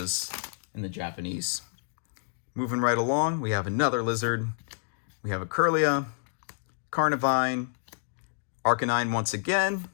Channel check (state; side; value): silent; right; digital silence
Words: in the Japanese. Moving right along, we have another Lizard. We have a Kirlia, Carnivine, Arcanine once again.